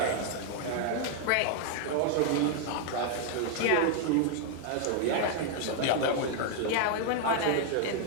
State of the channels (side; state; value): both; different; correlation 0.00